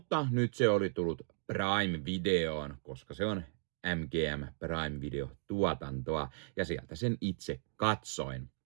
nyt se oli tullut Prime-videoon, koska se on MGM Prime-video-tuotantoa, ja sieltä sen itse katsoin.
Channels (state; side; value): silent; left; digital silence